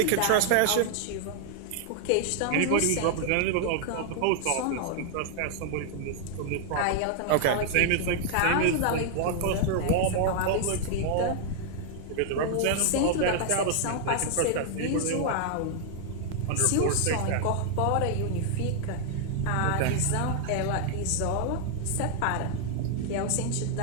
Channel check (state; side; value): different; both; correlation 0.00